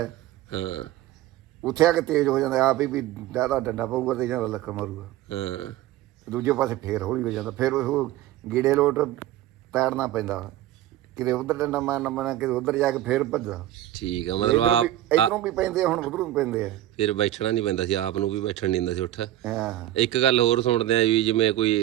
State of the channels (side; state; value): left; quieter; 14.0 dB